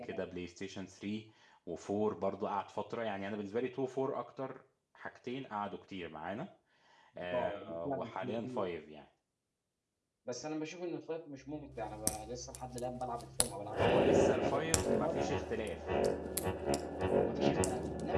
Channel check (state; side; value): identical; both; correlation 1.00